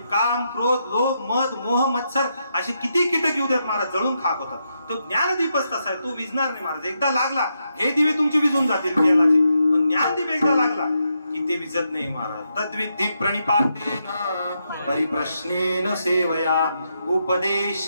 काम, क्रोध, लोभ, मद, मोह, मत्सर असे किती कीटक येऊ द्यात महाराज, जळून खाक होतात. तो ज्ञानदीपच तसा आहे, तो विझणार नाही महाराज. एकदा लागला हे दिवे तुमचे विझून जातील तेलाचे, पण ज्ञानदीप एकदा लागला की ते विजत नाही महाराज. तद्विद्धि प्रणिपातेन परिप्रश्नेन सेवया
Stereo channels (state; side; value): inverted; both; correlation -0.82